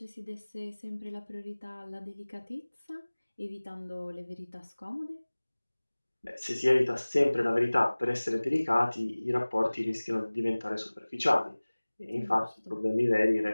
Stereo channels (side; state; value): both; inverted; correlation -1.00